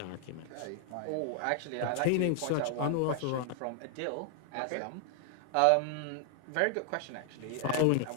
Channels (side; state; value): both; different; correlation 0.00